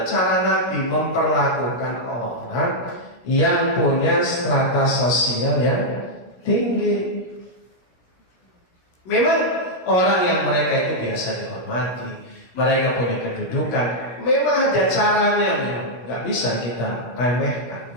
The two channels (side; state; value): right; late; 16 ms